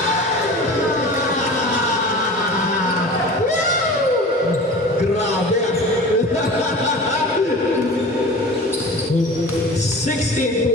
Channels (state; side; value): normal; both; correlation 0.37